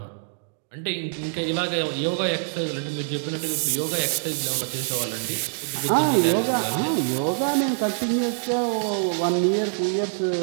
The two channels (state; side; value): silent; left; digital silence